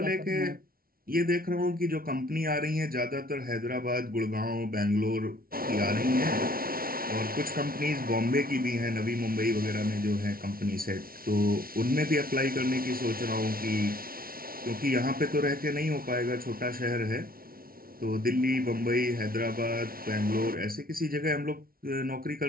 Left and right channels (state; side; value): late; left; 0.43 ms